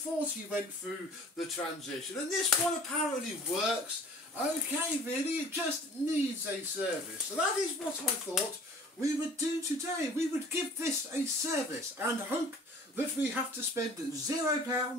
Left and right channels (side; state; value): both; normal; correlation 0.48